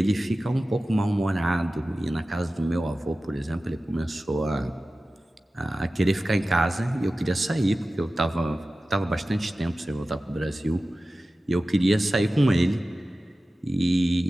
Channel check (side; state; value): both; normal; correlation 0.95